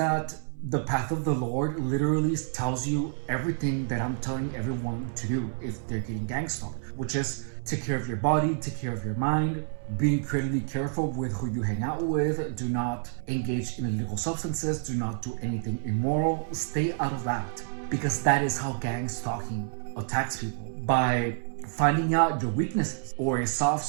the path of the Lord literally tells you everything that I'm telling everyone to do if they're getting gang stalked, which is take care of your body, take care of your mind, be incredibly careful with who you hang out with, do not engage in illegal substances, do not do anything immoral, stay out of that, because that is how gang stalking attacks people, by finding out your weaknesses or a soft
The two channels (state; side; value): silent; left; 59 dB below the other